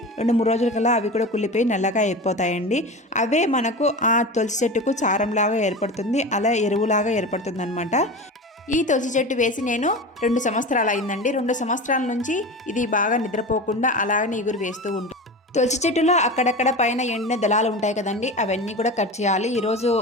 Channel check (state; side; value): normal; both; correlation 0.29